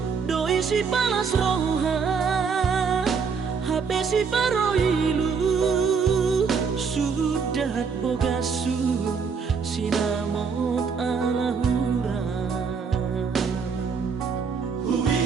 doi si palas roha hape si paroilu sudat bogasu sinamot alahura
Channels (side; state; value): left; quieter; 5.7 dB